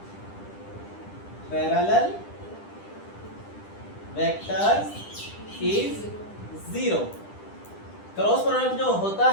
parallel vectors is 0। Cross product जो होता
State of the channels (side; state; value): right; late; 10 ms